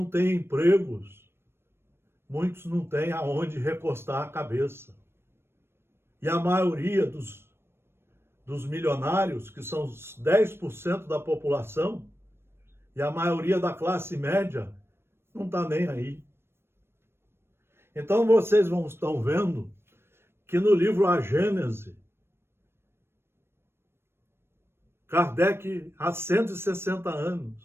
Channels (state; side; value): late; left; 0.12 ms